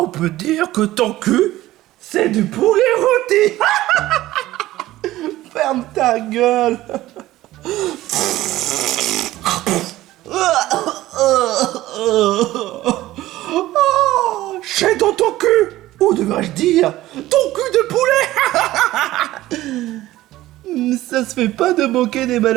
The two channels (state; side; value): quieter; left; 15.9 dB